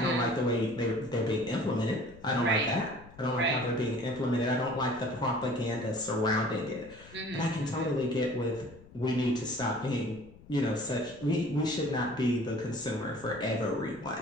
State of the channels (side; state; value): left; noise; rumble, 21 dB below the sound